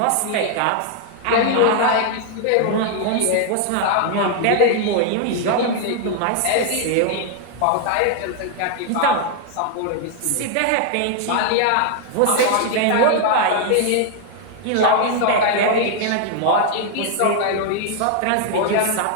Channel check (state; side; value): different; both; correlation 0.00